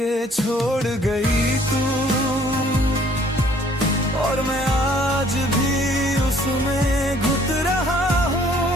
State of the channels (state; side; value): normal; both; correlation 0.59